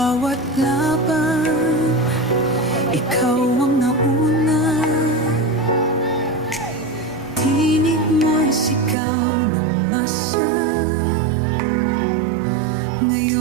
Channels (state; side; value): drops out; left; at 9.0 s